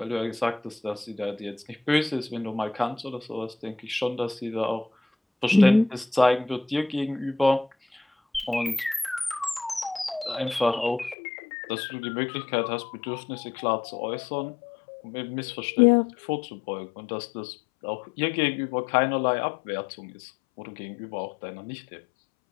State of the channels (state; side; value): drops out; right; at 11.2 s